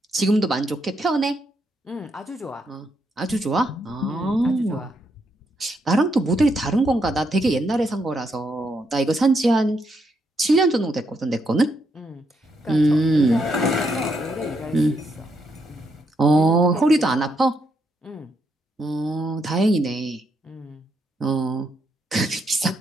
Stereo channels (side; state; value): both; normal; correlation 0.78